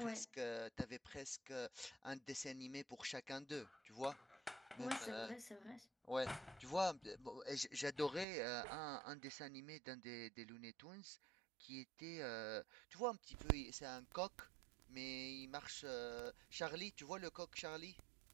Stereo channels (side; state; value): left; drops out; at 8.2 s